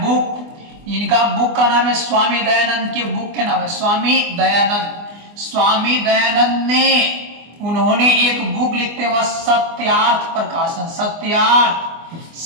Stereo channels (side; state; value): left; late; 24 ms